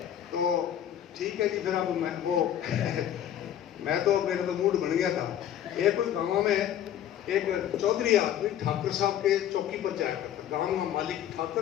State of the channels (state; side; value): quieter; right; 10.7 dB